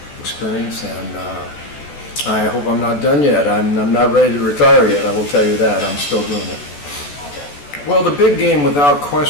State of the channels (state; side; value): late; right; 14 ms